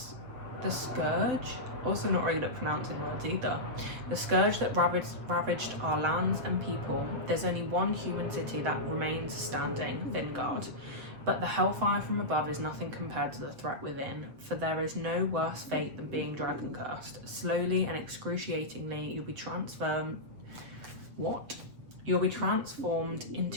scourge, also not very good at pronouncing words either, the scourge that ravaged our lands and people, there's only one human city that remains standing, Vingard. But the hellfire from above is nothing compared to the threat within, for there is no worse fate than being dragon cursed. Slowly and excruciatingly, you'll be transformed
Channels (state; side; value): late; left; 7.5 ms